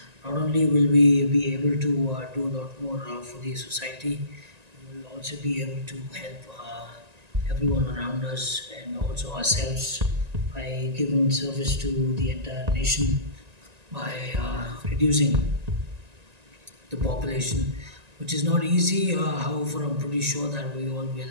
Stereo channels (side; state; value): left; late; 1.9 ms